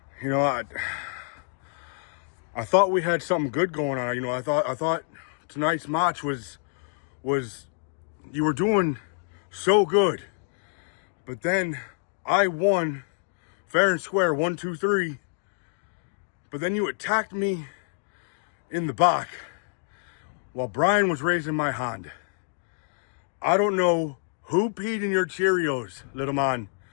You know, I thought we had something good going on. You know, I thought tonight's match was was you were doing so good, but then I won fair and square, 1, 2, 3, but then you attacked me in the back while Brian was raising my hand. I don't know who peed in your Cheerios, little man,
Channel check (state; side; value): silent; right; digital silence